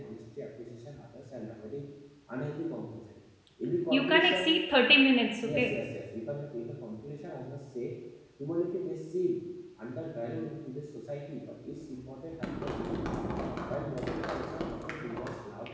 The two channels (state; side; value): identical; both; correlation 1.00